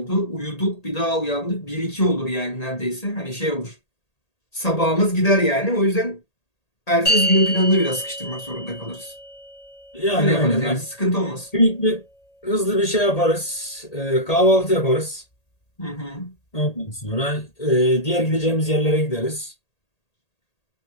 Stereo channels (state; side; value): late; right; 1.8 ms